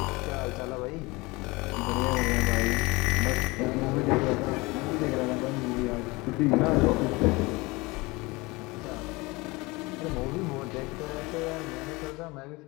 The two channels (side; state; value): right; quieter; 23.8 dB